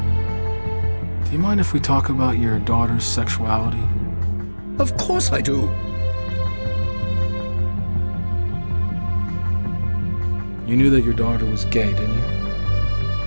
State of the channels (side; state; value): both; inverted; correlation -1.00